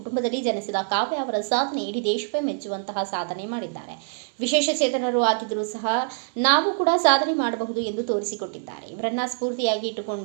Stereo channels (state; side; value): silent; left; digital silence